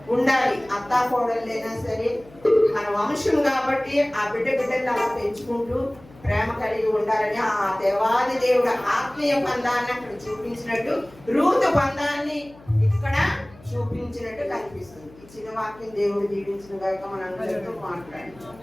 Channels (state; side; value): noise; left; hum, 23 dB below the sound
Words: ఉండాలి. అత్తా కోడళ్ళైనా సరే మన వంశం కాబట్టి ఆ బిడ్డలు అలా పెంచుకుంటూ ప్రేమ కలిగి ఉండాలని ఆ దేవాది దేవుడు ఆత్మీయ బంధాన్ని అక్కడ చూపించినట్టు రూతు బంధాన్ని ఇక్కడ చూపించినట్టు కనిపిస్తుంది. ఈ చిన్న వాక్యం దేవుడు దీవించిన గాక మనందరితో మాట్లాడి